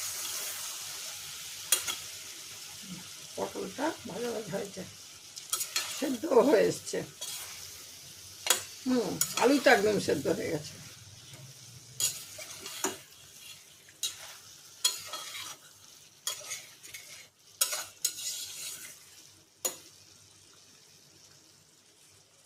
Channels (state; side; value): identical; both; correlation 1.00